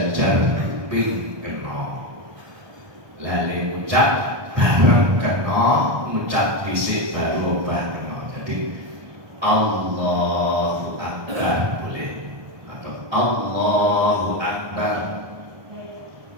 kuping kena. Lali ngucap bareng kena, ngucap dhisik baru obah kena. Jadi Allahu Akbar boleh, atau Allahu Akbar,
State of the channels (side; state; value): left; late; 1.2 ms